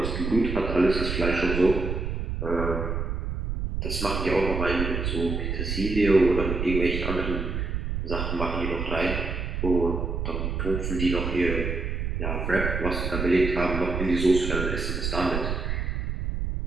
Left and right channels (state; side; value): noise; right; rumble, 2 dB below the sound